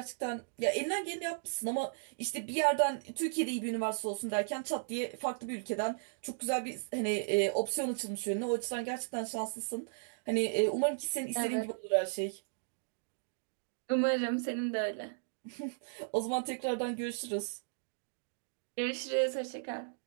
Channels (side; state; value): left; silent; digital silence